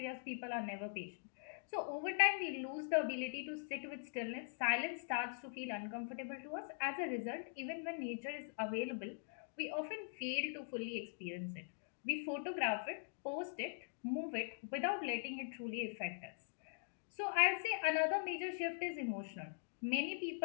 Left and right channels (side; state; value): right; silent; digital silence